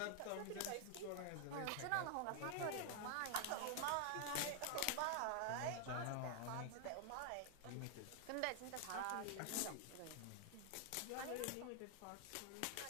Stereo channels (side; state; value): both; different; correlation 0.00